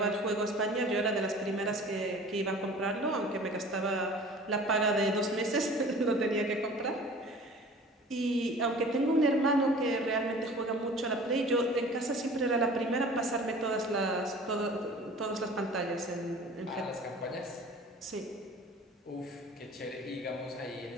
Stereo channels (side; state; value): both; normal; correlation 0.44